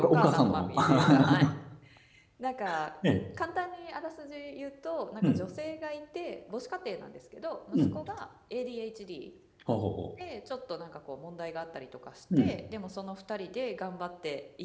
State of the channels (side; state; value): both; identical; correlation 1.00